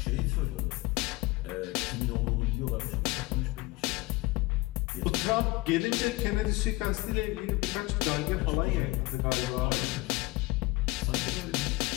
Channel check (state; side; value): quieter; right; 21.4 dB